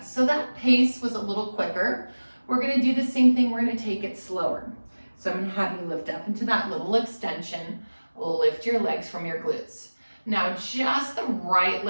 So that pace was a little quicker. We're gonna do the same thing, we're gonna take it slower. So I'm gonna have you lift up into that little extension, lift your legs from your glutes. Now just the right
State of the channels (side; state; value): both; inverted; correlation -1.00